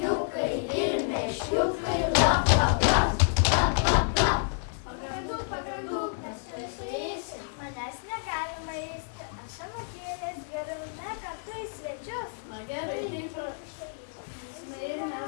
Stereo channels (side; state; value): right; silent; digital silence